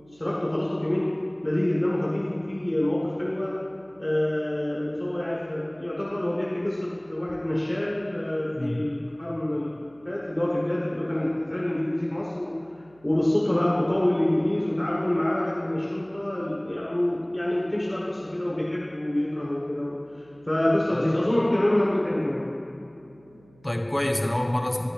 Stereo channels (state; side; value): noise; right; hum, 30 dB below the sound